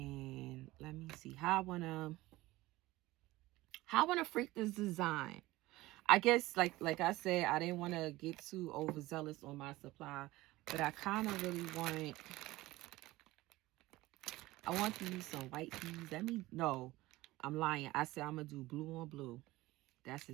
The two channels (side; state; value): left; quieter; 18.6 dB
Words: let me see how I wanna freak this design. I guess like I said, I didn't want to get too overzealous on my supply, but I kind of really want to use some white beads. No, I'm lying. I said I'm gonna do blue on blue. That's